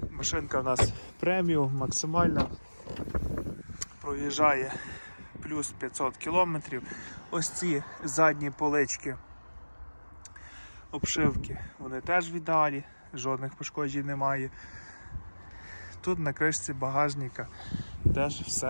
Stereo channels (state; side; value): inverted; both; correlation -1.00